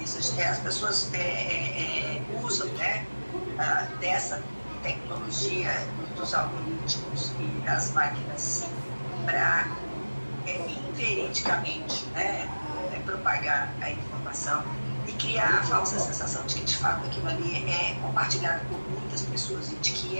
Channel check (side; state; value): both; inverted; correlation -1.00